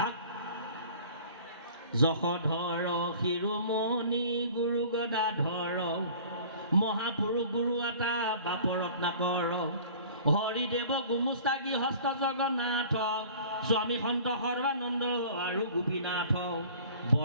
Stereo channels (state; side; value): inverted; both; correlation -0.46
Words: যশোধৰ শিৰোমণি গুৰু গদাধৰ, মহাপুৰুষ গুৰু এটা বাপ ৰত্নাকৰ, হৰিদেৱ গুমুস্তা গৃহস্থ জগন্নাথ, স্বামী সন্ত সৰ্বানন্দ আৰু গোপীনাথ,